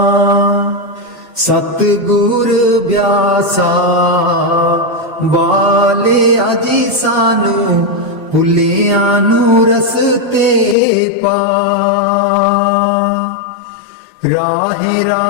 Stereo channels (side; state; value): right; drops out; at 10.8 s